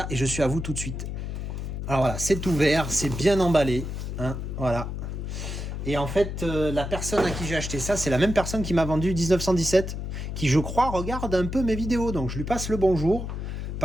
et je suis à vous tout de suite. Alors voilà, c'est ouvert, c'est bien emballé. Hein, voilà. Et en fait, la personne à qui j'ai acheté ça, c'est la même personne qui m'a vendu 1917, qui je crois regarde un peu mes vidéos. Donc je lui passe le bonjour.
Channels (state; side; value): noise; left; hum, 5 dB below the sound